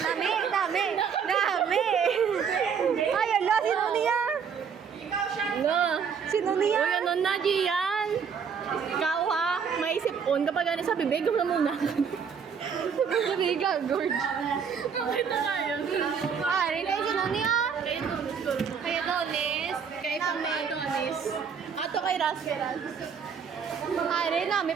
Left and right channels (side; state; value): left; quieter; 6.7 dB